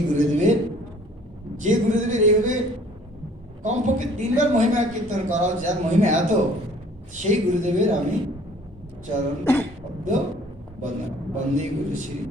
গুরুদেবের, যে গুরুদেবের এইভাবে কমপক্ষে 3 বার মহিমা কীর্তন করা উচিত, যার মহিমা এত, সেই গুরুদেবের আমি চরণ পদ্ম বন্দনা, বন্দে গুরু শ্রী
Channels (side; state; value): both; normal; correlation 0.54